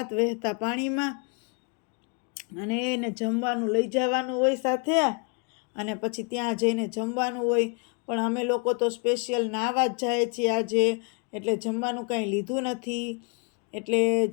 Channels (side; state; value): right; quieter; 34.5 dB